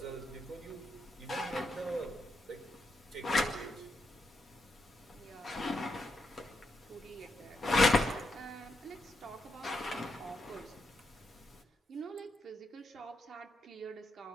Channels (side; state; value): both; normal; correlation 0.81